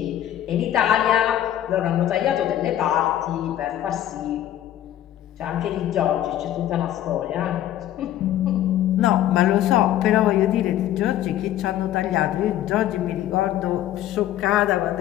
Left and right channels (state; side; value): quieter; right; 12.3 dB